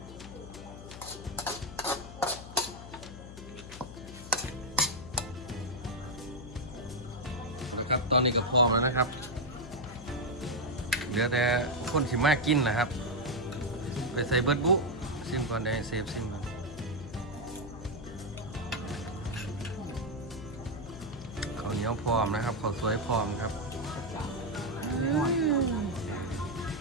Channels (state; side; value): noise; left; hum, 13 dB below the sound